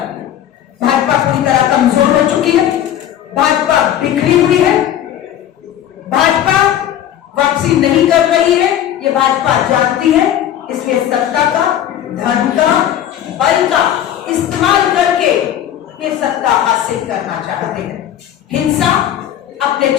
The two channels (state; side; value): quieter; right; 11.0 dB